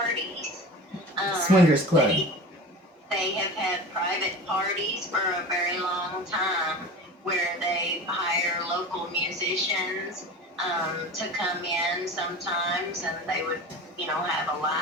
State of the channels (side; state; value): both; normal; correlation 0.34